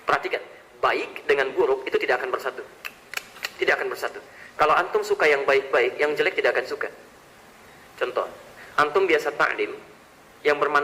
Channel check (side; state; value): both; identical; correlation 1.00